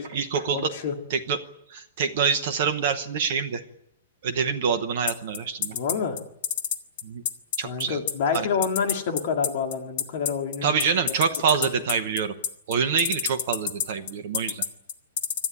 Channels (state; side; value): inverted; both; correlation -0.34